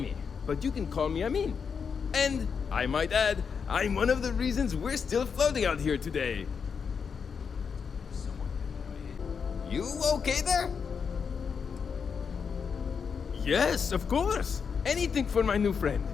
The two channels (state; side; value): quieter; right; 6.2 dB